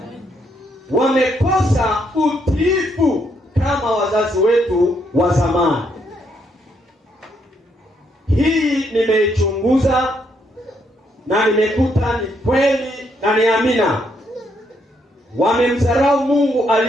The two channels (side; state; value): both; normal; correlation 0.74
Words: Wamekosa utiifu kama wazazi wetu wa zamani. Hii nimeichunguza na nimekuta ni kweli na ni amina. Wamemdharau Mungu